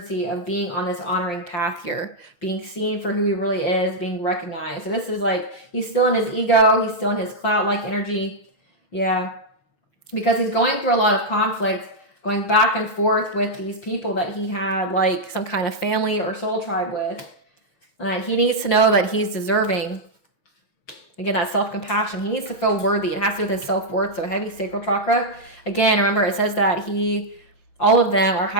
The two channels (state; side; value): late; right; 5.7 ms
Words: of being on this honoring path here, being seen for who he really is, being recognized. So this is like, he's still in his ego, he's still in his cloud-like energy. Yeah, because he's going through a lot of conflict, going back and forth with these people that he had like some kind of family or soul tribe with. And he needs to know that he's deserving. Again, that self-compassion. He needs to feel worthy. It has to do with his self-worth. So heavy sacral chakra. Again, remember, it says that all of them are